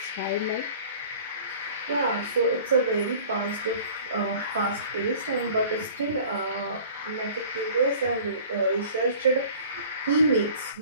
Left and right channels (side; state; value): both; inverted; correlation -0.46